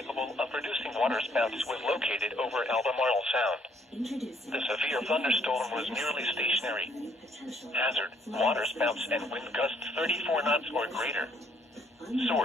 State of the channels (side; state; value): both; normal; correlation 0.66